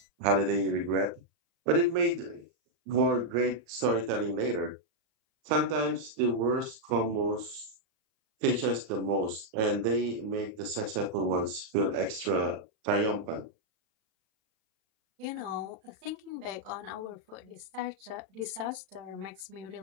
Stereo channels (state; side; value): late; left; 37 ms